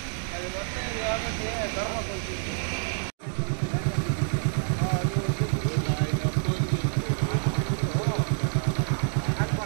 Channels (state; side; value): silent; left; 60 dB below the other